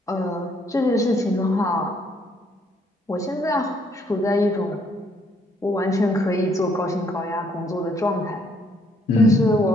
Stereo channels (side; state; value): both; normal; correlation 0.68